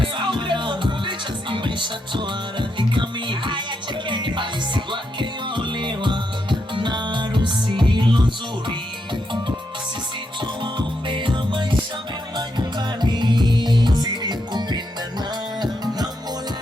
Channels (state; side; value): normal; both; correlation 0.81